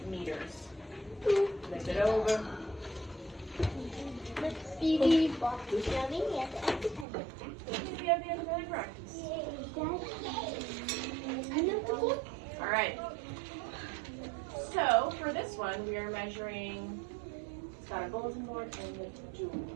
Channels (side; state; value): left; drops out; at 7.1 s